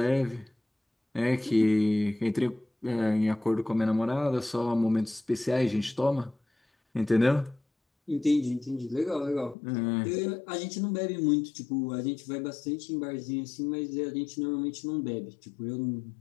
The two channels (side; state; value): right; drops out; at 9.6 s